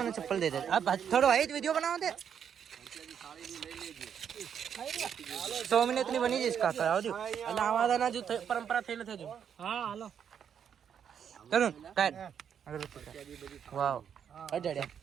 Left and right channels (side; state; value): left; quieter; 8.1 dB